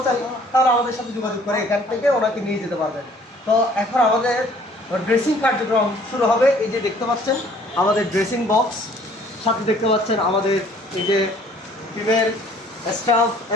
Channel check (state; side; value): normal; both; correlation 0.56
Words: তাহলে আমাদের সাথে যোগাযোগ করে এখান থেকে ওনাকে নিয়ে যেতে পারবেন। তো এখন আমাদের ড্রেসিং কার্যক্রম শুরু হবে। এই যে দেখতে পাচ্ছেন আমাদের ড্রেসিং বক্স, সাথে দেখতে পাচ্ছেন আমাদের এই যে টিমের স্টাফ